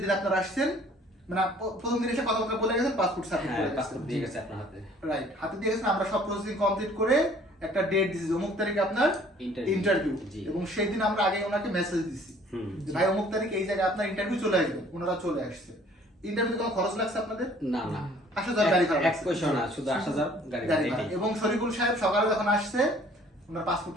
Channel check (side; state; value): both; normal; correlation 0.55